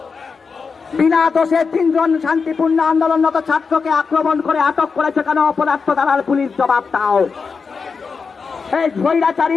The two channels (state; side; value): quieter; right; 5.2 dB